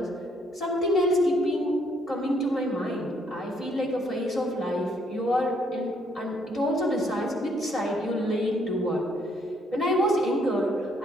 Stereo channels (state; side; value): normal; both; correlation 0.68